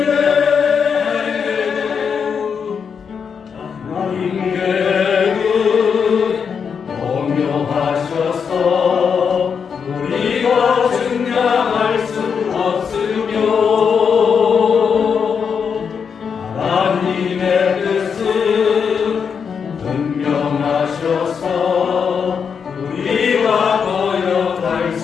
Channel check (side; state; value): right; quieter; 6.5 dB